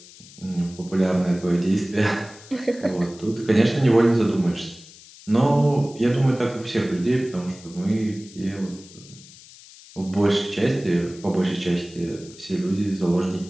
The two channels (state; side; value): noise; left; hiss, 21 dB below the sound